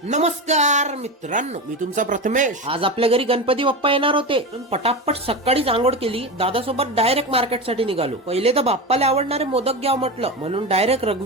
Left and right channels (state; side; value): normal; both; correlation 0.21